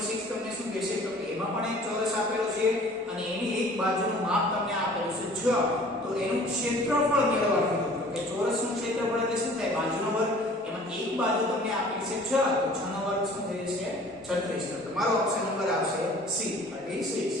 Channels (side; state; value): both; normal; correlation 0.50